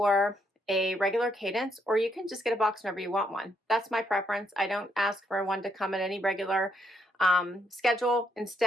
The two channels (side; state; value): both; normal; correlation 0.74